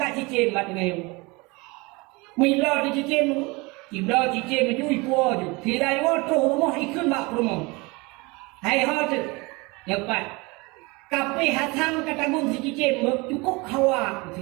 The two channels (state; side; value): quieter; left; 25.5 dB